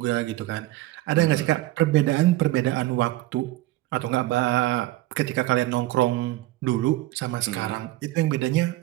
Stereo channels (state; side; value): quieter; left; 17.1 dB